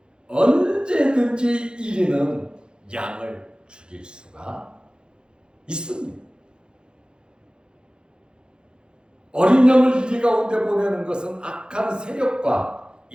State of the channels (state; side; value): late; left; 0.049 ms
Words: 언제든지 이리는 양을 죽일 수가 있습니다. 어린 양을 이리 가운데 보내는 것은 악한 세력과